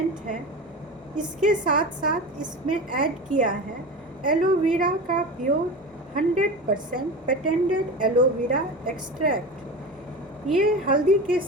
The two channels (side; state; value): both; normal; correlation 0.28